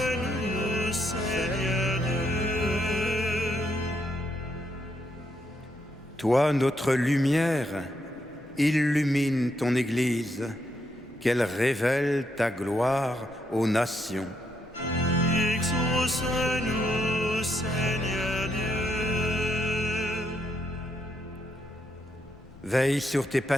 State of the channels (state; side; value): normal; both; correlation 0.77